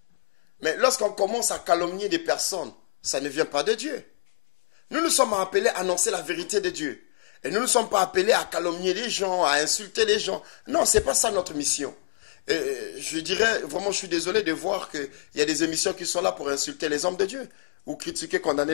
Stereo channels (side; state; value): right; silent; digital silence